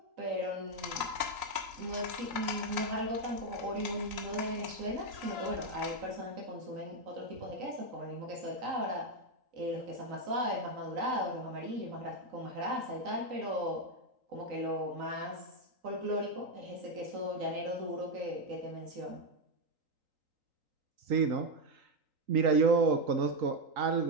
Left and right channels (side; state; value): left; late; 3.9 ms